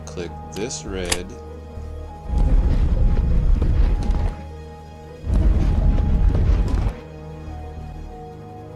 click this red.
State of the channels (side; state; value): both; identical; correlation 1.00